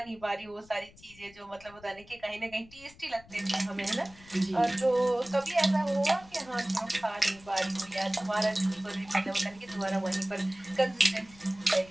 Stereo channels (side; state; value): left; noise; rumble, 24 dB below the sound